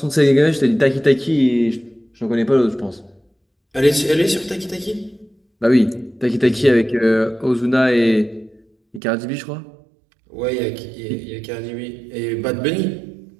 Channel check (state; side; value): drops out; left; at 9.0 s